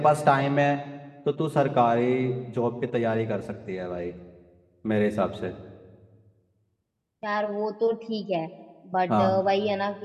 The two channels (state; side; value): identical; both; correlation 1.00